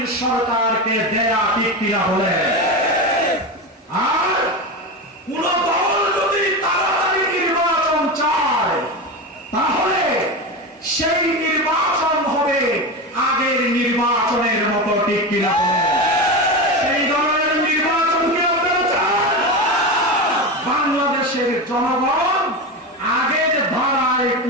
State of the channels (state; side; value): normal; both; correlation 0.20